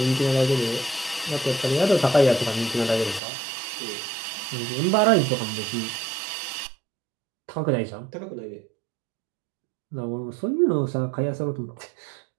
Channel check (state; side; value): drops out; left; at 3.2 s